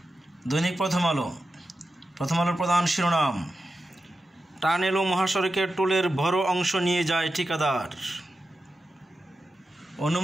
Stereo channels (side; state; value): both; normal; correlation 0.91